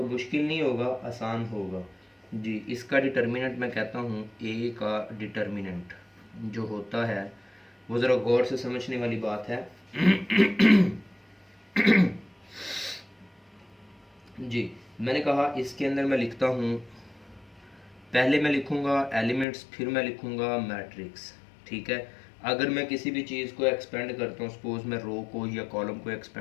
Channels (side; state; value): right; drops out; at 19.5 s